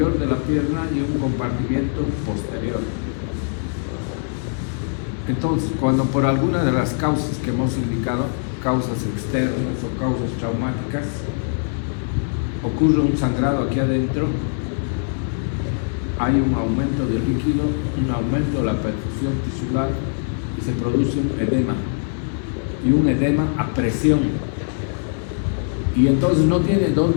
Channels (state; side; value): silent; right; 64 dB below the other